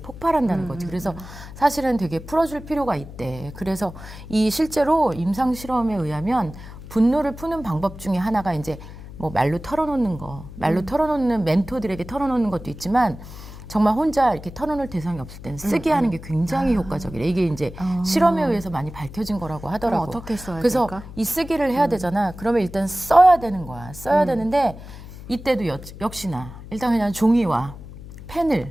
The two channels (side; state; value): left; noise; hum, 14 dB below the sound